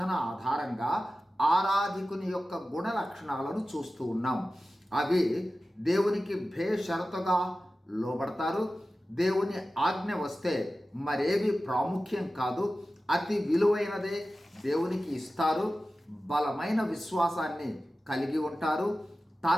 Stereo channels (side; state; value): both; normal; correlation 0.95